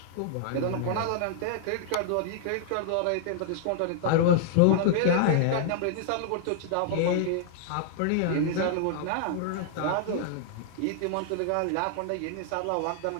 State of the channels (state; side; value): different; both; correlation -0.01